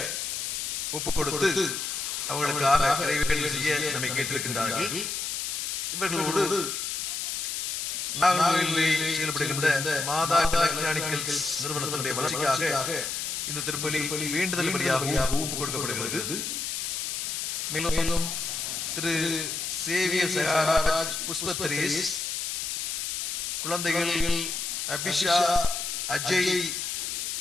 ஒப்புக் கொடுத்து அவர்களுக்காக நிறைவேற்றல் செய்ய நம்மை கேட்டிருக்கின்றார்கள். இவர்களோடு நாகர்கோவிலில் செயல்படுகின்ற மாதா எலக்ட்ரானிக்கல்ஸ் நிறுவனத்தினுடைய வளர்ச்சிக்காக இந்த திருப்பலி வேண்டுதல் பலியாக ஒப்புக் கொடுக்கப்படுகிறது. மேலும் திரு சேவியர் சகாராஜ் புஷ்பத்ரேஸ் குழந்தைகள் அபிஷா அஜய்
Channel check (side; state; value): left; noise; hiss, 3 dB below the sound